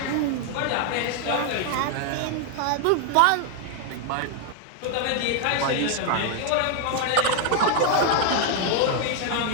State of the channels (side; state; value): both; different; correlation 0.00